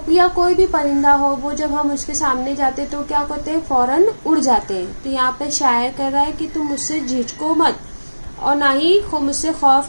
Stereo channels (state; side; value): inverted; both; correlation -1.00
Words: या कोई भी परिंदा हो, वो जब हम उसके सामने जाते तो क्या करते हैं, फौरन उड़ जाते हैं। तो यहाँ पे शायर कह रहा है कि तुम मुझसे झिझको मत और ना ही मुझसे